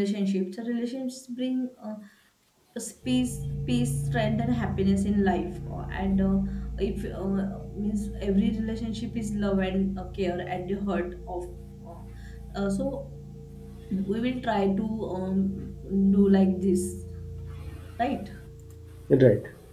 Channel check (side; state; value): both; identical; correlation 1.00